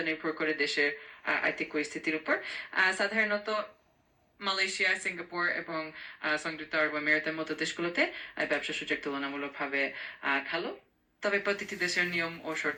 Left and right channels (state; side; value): identical; both; correlation 1.00